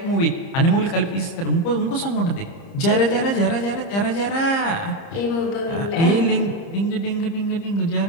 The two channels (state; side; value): late; right; 30 ms